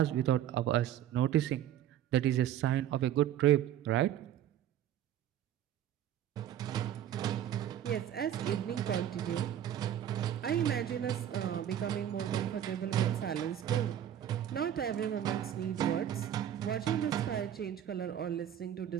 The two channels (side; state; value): left; quieter; 10.8 dB